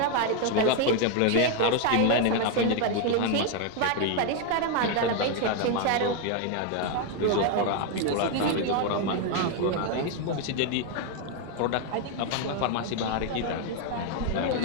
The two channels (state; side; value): different; both; correlation 0.01